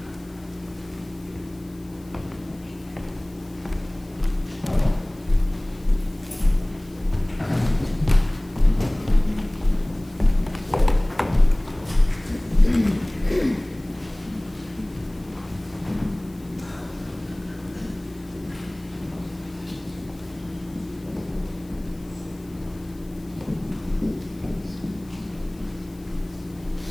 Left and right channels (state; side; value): noise; left; hiss, 27 dB below the sound